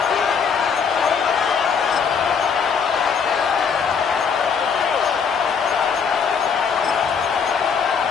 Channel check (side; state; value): right; quieter; 6.2 dB